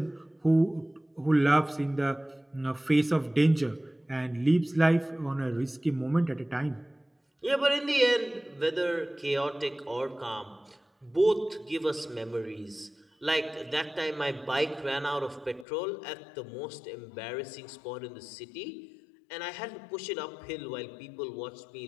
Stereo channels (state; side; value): drops out; right; at 15.7 s